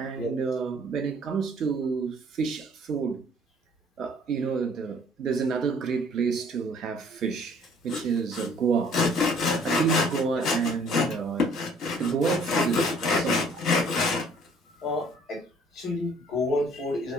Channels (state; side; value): normal; both; correlation 0.57